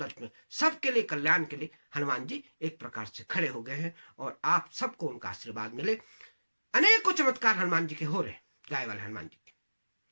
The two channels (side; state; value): both; inverted; correlation -1.00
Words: में सबके लिए कल्याण के लिए हनुमान जी एक प्रकार से खड़े हो गए हैं, और आप सबको उनका आशीर्वाद मिले। अनेकों चमत्कार हनुमान जी के हो रहे हैं, गाय वाले हनुमान जी के।